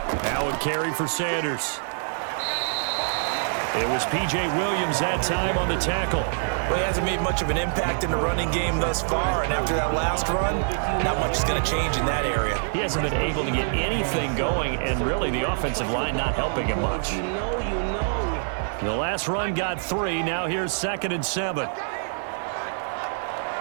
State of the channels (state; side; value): silent; left; 57 dB below the other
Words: Now a carry for Sanders. It was P.J. Williams that time on the tackle. Well, he hasn't made much of an impact in the running game thus far, and after that last run, not much is going to change in that area. He hasn't been able to get anything going, and really the offensive line not helping him much. The last run got 3. Now here's 2nd and 7.